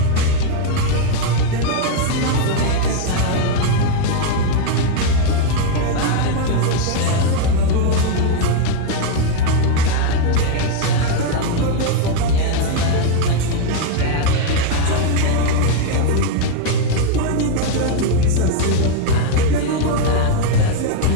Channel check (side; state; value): both; different; correlation 0.01